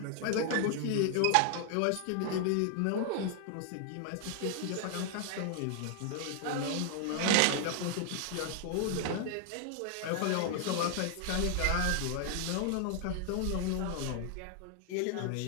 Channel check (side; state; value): both; different; correlation 0.00